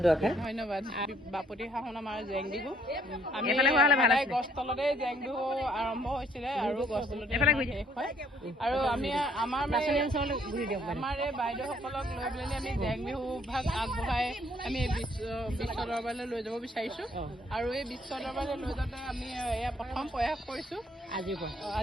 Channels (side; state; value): both; normal; correlation 0.66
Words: দুআষাৰ। ধন্যবাদ। বাপতি সাহোন আমাৰ জেং বিহু, আমি গছ তলতে জেং বিহু আৰম্ভ হৈছিলে আৰু গছ তলতে শেষ হয়। আৰু আমি আমাৰ এই বাইদেউসকলক লৈ পেলাই আমি জেং বিহু ভাগ আগবঢ়াই আমি বিশ্ব দৰবাৰলৈ লৈ যাব বিচাৰিছোঁ। আৰু এই বিশ্ব দৰবাৰলৈ লৈ যাওঁতে আমি এয়া প্ৰথম প্ৰয়াস কৰিছোঁ।